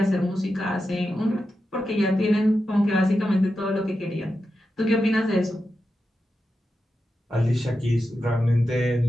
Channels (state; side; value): normal; both; correlation 0.89